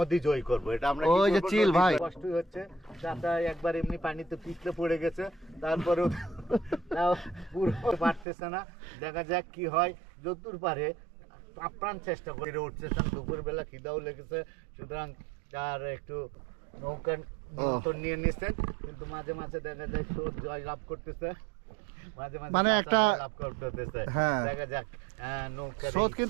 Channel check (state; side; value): drops out; left; at 8.2 s